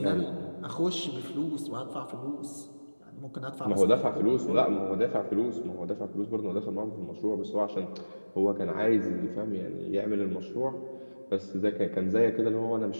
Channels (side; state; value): both; inverted; correlation -1.00